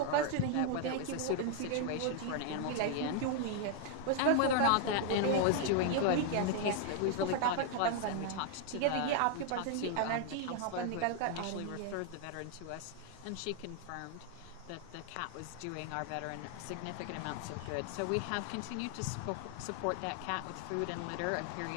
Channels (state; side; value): different; both; correlation 0.00